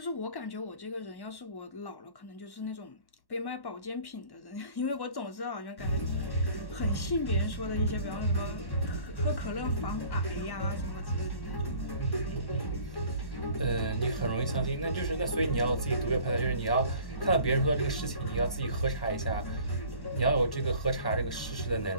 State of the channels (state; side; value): late; right; 1.1 ms